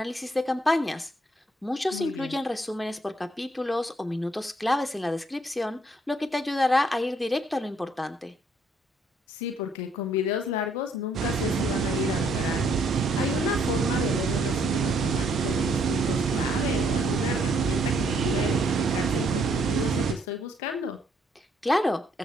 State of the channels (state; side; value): normal; both; correlation 0.69